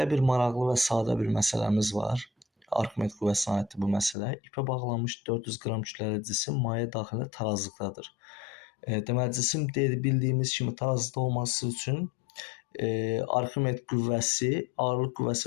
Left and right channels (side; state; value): right; drops out; at 4.2 s